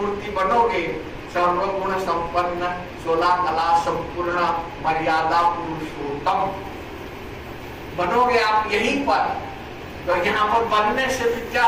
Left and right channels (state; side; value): identical; both; correlation 1.00